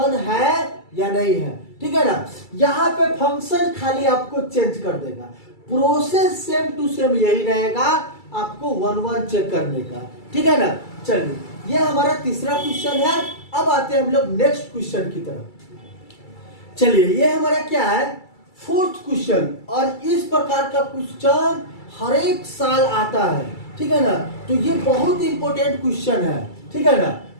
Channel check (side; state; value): right; late; 2.3 ms